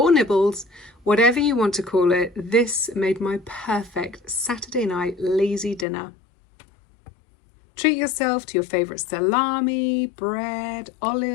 nibbles, whatever you want to call it, this made my perfect Saturday night lazy dinner. Treat yourself to your favourite salami, bread,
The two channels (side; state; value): right; drops out; at 5.9 s